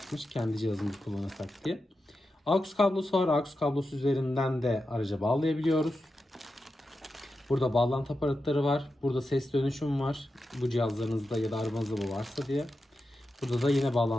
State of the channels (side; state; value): both; normal; correlation 0.90